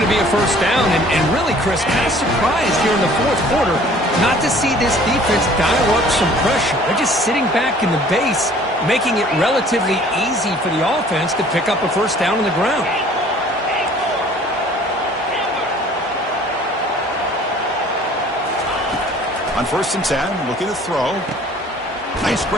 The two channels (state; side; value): normal; both; correlation 0.52